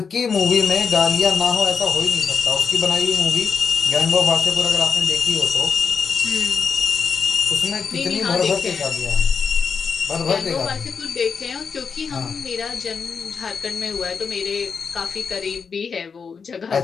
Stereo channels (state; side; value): quieter; right; 5.8 dB